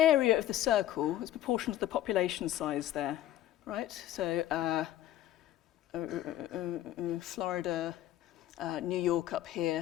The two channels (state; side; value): quieter; right; 13.1 dB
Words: of the circle is proportional to the population size there, right? So Florida, New York up